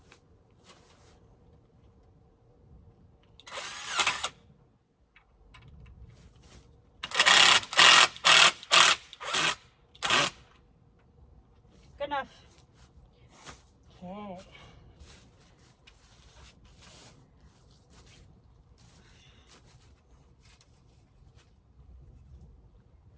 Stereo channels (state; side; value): identical; both; correlation 1.00